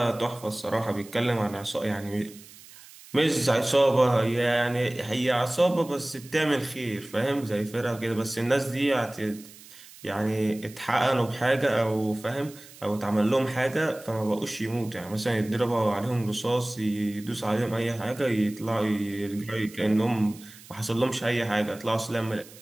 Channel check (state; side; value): noise; right; hiss, 20 dB below the sound